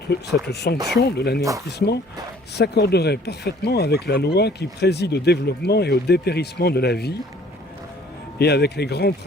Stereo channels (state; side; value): normal; both; correlation 0.55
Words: sanction de l'anéantissement s'accorderait parfaitement avec la loi qui préside au développement et au dépérissement de la vie, et avec les grands